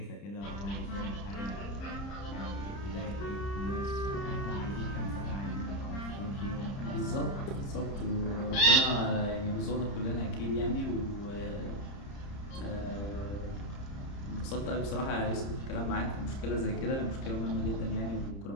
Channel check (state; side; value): late; right; 30 ms